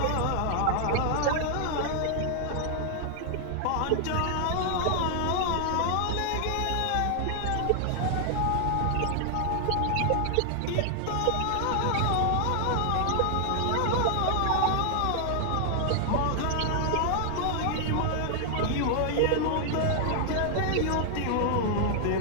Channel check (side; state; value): both; different; correlation 0.00